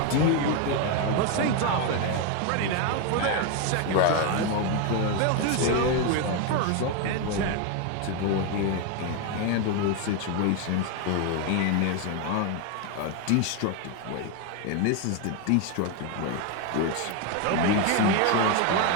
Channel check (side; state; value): both; different; correlation 0.02